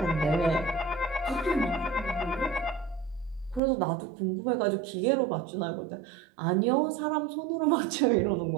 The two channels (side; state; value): left; drops out; at 3.6 s